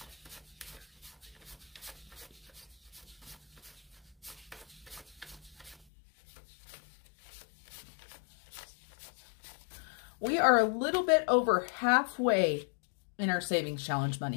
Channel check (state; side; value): drops out; right; at 5.9 s